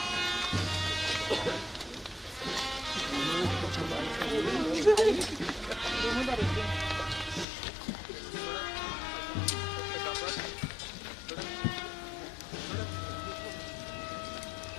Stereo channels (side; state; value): right; drops out; at 7.5 s